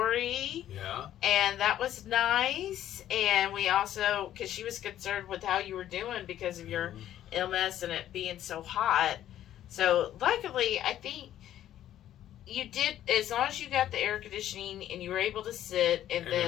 Yeah. and that was nice. And we also, because she was concerned with how you were doing because of your illness and it being so hot. So luckily, I think you did, as long as you got the air conditioning and you were able to sit, and And then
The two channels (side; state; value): right; quieter; 11.9 dB